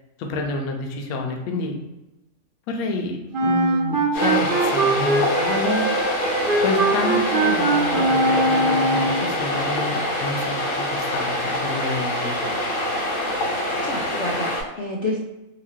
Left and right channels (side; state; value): right; late; 3.6 ms